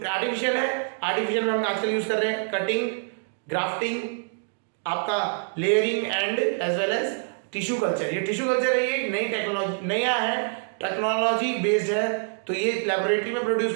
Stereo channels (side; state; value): left; silent; digital silence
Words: आर्टिफिशियल है, आर्टिफिशियल में हम आजकल यूज कर रहे हैं कटिंग, ग्राफ्टिंग, आपका layering and as well as tissue culture. ये टिश्यू कल्चर है, ये नई टेक्नोलॉजी, नया है, टेक्नोलॉजी बेस्ड है, तो ये लेबोरेटरी में प्रोड्यूस